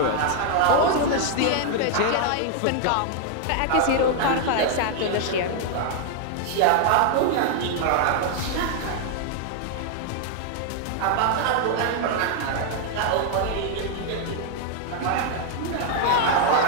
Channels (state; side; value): different; both; correlation 0.00